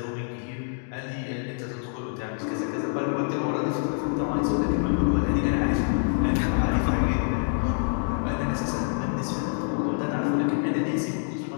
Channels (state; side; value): silent; right; digital silence